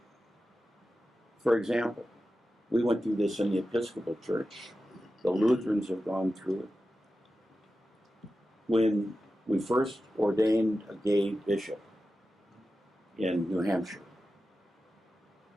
For example, we went through this in the Episcopal Church. The Lutherans have gone through it. When we first ordained a gay bishop in New Hampshire,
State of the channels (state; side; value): normal; both; correlation 0.93